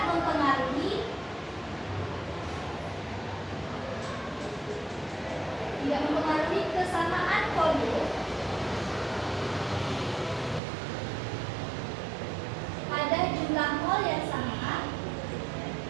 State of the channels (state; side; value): drops out; left; at 10.6 s